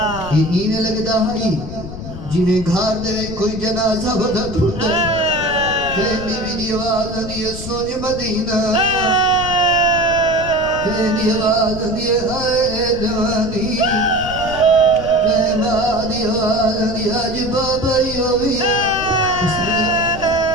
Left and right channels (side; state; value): left; noise; rumble, 10 dB below the sound